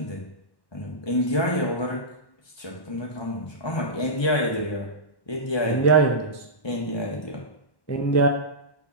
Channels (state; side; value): late; right; 1.1 ms